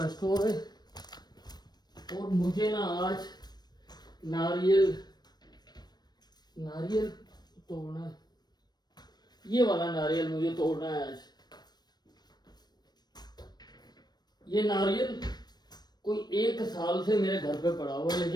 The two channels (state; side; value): late; right; 0.20 ms